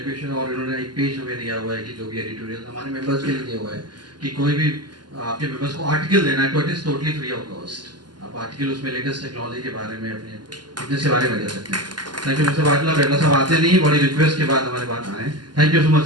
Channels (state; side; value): late; left; 0.71 ms